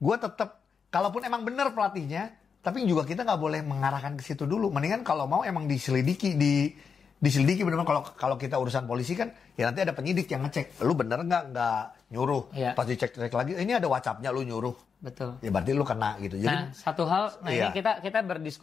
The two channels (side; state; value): right; quieter; 6.1 dB